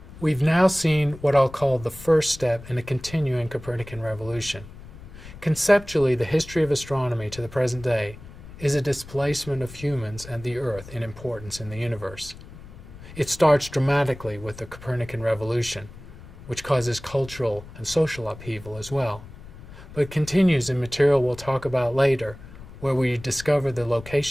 We've now seen what I'll call the first step in a continuing Copernican revolution. Conceptually, the history of astronomy to the present day is a displacement of humans and the Earth in importance in the universe. It starts dramatically with the Copernican revolution, which causes cultural and social upheaval as well, but continues in material we'll talk about later, where we discover the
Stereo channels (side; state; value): left; noise; rumble, 17 dB below the sound